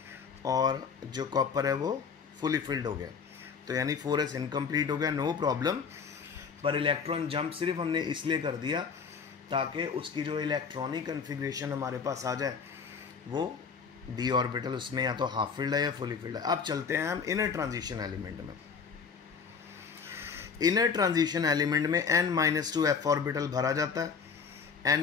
और जो कॉपर है वो फुली फील्ड हो गया। तो यानी 4s इनकम्प्लीट हो गया, नो प्रॉब्लम। पर इलेक्ट्रॉन जंप सिर्फ हमने इसलिए कर दिया ताकि उसकी जो इलेक्ट्रॉनिक कन्फिग्रेशन हमारे पास आ जाए वो डी ऑर्बिटल उसमें या तो हाफ फील्ड है या फुली फील्ड है। अब चलते हैं हम इनर ट्रांजिशन एलिमेंट में। इनर ट्रांजिशन एलिमेंट में n-2 f ऑर्बिटल भरा जाता है,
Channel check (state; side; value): quieter; right; 5.8 dB